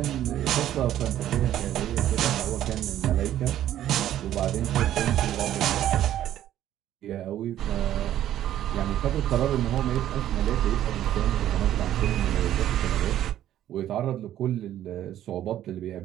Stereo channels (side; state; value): left; quieter; 12.0 dB